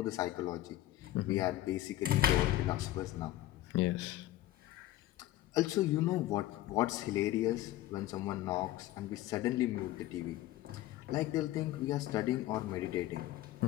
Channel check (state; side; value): quieter; right; 14.8 dB